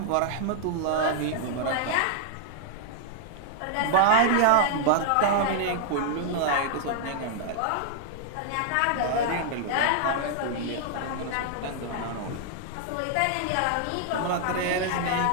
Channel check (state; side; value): different; both; correlation -0.01